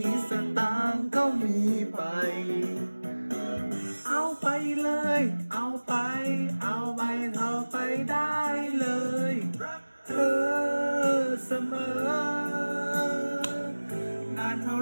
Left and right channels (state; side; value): inverted; both; correlation -1.00